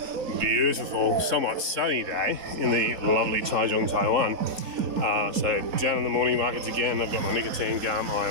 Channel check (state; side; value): late; left; 3.9 ms